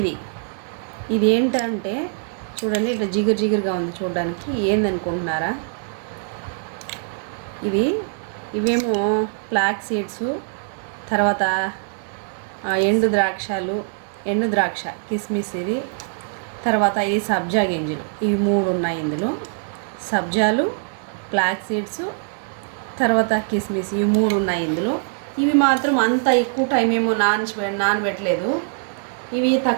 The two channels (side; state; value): left; silent; digital silence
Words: ఇది ఏంటంటే చూడండి, ఇట్లా జిగురుగా ఉంది చూడడానికి. ఏందనుకుంటున్నారా? ఇవేమో ఫ్లాక్ సీడ్స్, తర్వాత ఎండు ద్రాక్ష కిస్మిస్, ఇది తర్వాత ఇది సబ్జా గింజలు. ఇవి 3 ఉన్నాయి ఇందులో. సబ్జాలు, ఫ్లాక్ సీడ్స్, తర్వాత కిస్మిస్, ఇవి 3 ఉన్నాయి ఇందులో. ఇవి మాత్రం అంత ఎక్కువ టైం ఏమో నానబెట్టలేదు. ఇవి